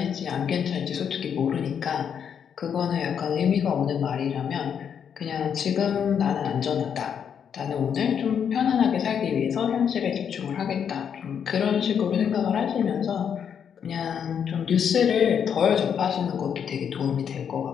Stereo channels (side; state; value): right; quieter; 7.8 dB